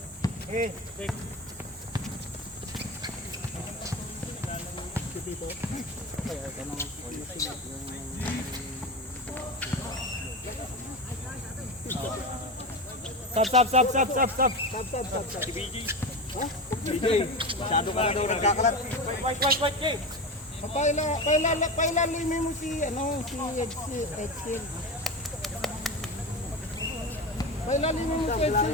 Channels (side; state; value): both; normal; correlation 0.23